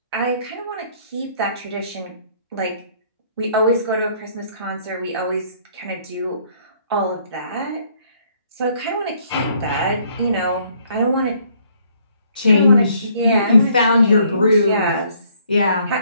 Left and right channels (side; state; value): both; inverted; correlation -0.64